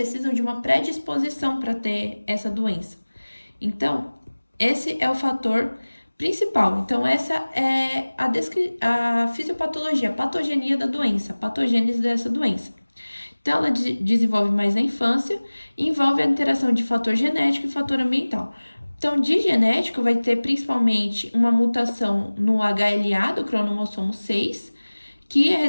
de uma predisposição para ter essa doença. Então, esse é o fator principal. Então, essa é a fisiopatologia, a patogenia da doença, a patogênese dessa doença. Então, ela desenvolve mais na infância e envolve a interação de fator genético e fator ambiental. Então, de genético, vai ter principalmente uma mutação no HLA do cromossomo 6, que é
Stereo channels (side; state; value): both; inverted; correlation -1.00